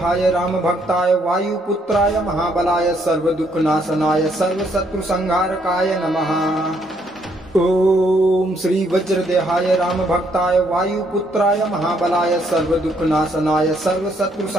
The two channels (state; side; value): normal; both; correlation 0.70